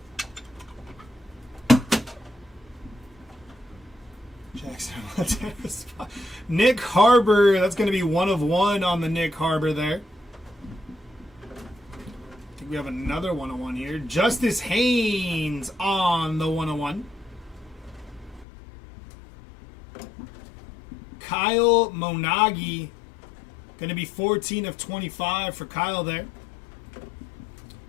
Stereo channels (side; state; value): right; drops out; at 18.4 s